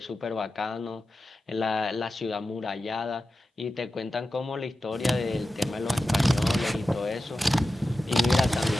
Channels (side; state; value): both; normal; correlation 0.93